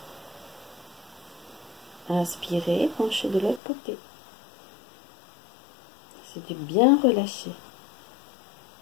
Inspirez, penchez de l'autre côté. C'est de bien relâcher.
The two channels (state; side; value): drops out; right; at 3.6 s